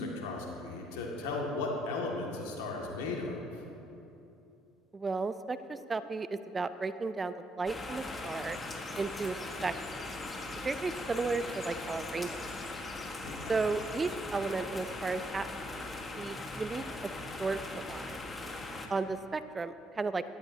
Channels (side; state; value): both; normal; correlation 0.75